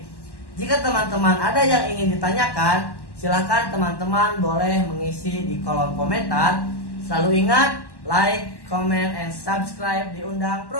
Jika teman-teman ada yang ingin ditanyakan, silahkan teman-teman boleh mengisi di kolom komentar. Selalu ingat, like, comment, and subscribe di Undang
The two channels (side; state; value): right; late; 1.1 ms